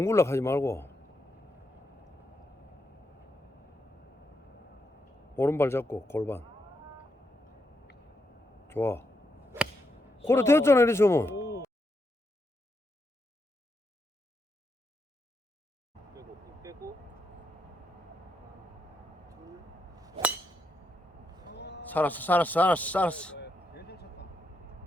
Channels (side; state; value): both; normal; correlation 0.81